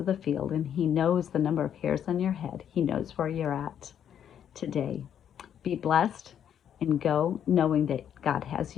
the field and he knows the number of hairs on your head, he knows where you're at today. Be blessed and go knowing that God has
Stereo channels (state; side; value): quieter; right; 9.3 dB